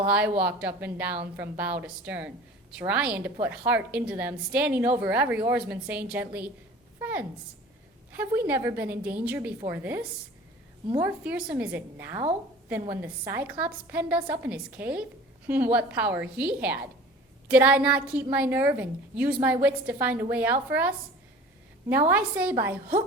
I walked up and down from bow to stern, trying to put heart into them, standing over every oarsman, saying gently, "Friends, have we never been in danger before this? More fearsome is it now than when the Cyclops penned us up in his cave? What power he had! Did I not keep my nerve and use my wits to find a way out for us? Now I say, by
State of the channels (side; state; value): both; normal; correlation 0.42